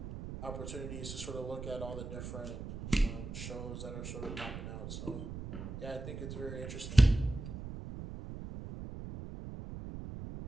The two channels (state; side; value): noise; right; rumble, 8 dB below the sound